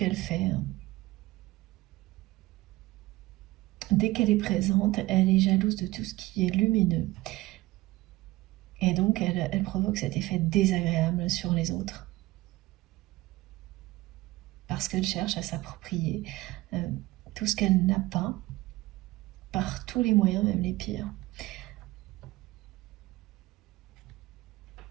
fait. Dès qu'elle est présente, elle est jalouse de tout ce qui est lumineux. Et donc elle provoque cet effet désagréable sur les autres, parce qu'elle cherche à s'approprier tout ce qu'elle n'a pas, par tous les moyens, même les pires.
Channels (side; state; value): left; quieter; 19.0 dB